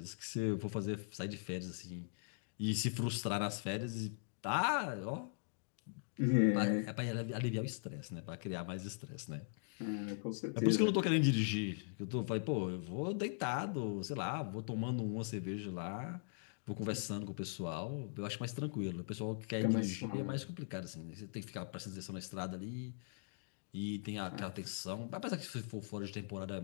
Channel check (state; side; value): silent; right; digital silence